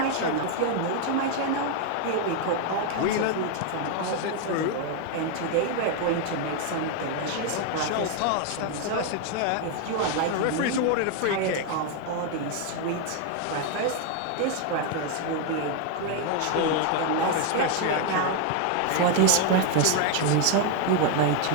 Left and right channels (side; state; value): both; different; correlation 0.01